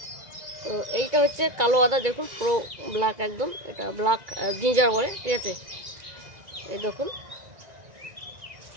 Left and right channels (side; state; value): left; late; 1.9 ms